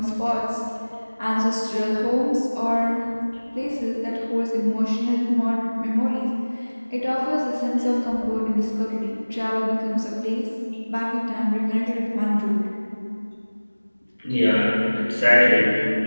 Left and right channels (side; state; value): both; inverted; correlation -1.00